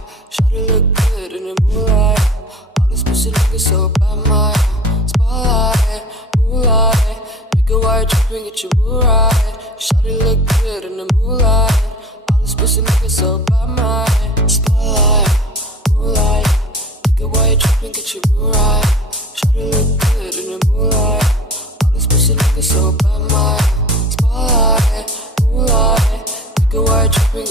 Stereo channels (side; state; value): both; normal; correlation 0.42